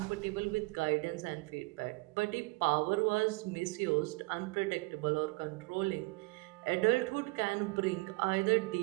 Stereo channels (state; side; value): quieter; left; 25.2 dB